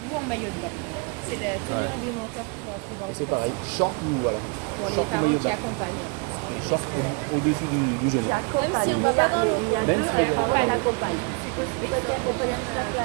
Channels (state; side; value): quieter; left; 32.8 dB